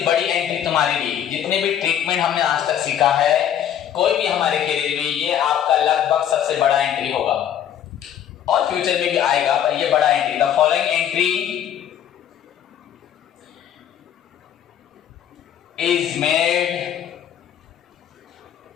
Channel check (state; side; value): quieter; right; 9.9 dB